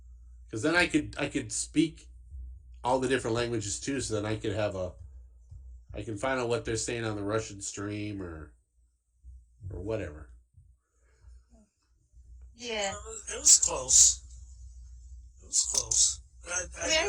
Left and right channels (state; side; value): identical; both; correlation 1.00